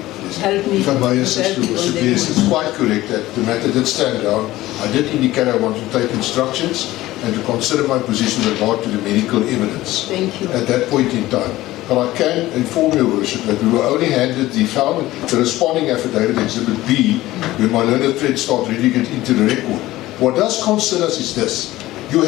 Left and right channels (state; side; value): quieter; right; 16.7 dB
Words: Help me. if I may assist, help me Your on Worship, that yes, one. it's quite correct that the matter did stand down. I did indicate I want to take instructions, and to consider my position with regard to the medical evidence. Thank you. At that point in time. But I can inform your worship that we were only handed the responding affidavit, Exhibit B, when my learned friend started reading it into the record. What does concern us is this. You